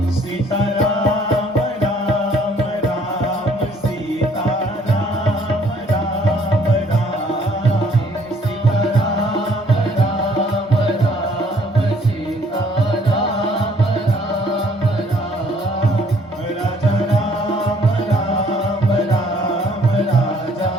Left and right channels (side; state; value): both; normal; correlation 0.61